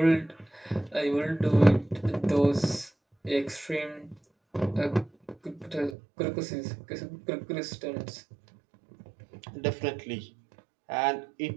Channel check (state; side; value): drops out; left; at 6.0 s